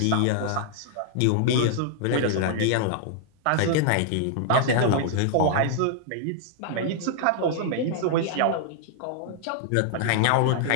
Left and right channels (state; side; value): different; both; correlation -0.01